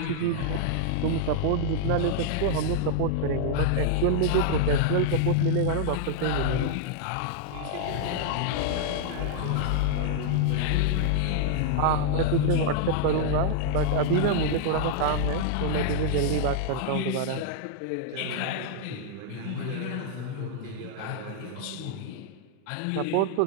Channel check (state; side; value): different; both; correlation -0.01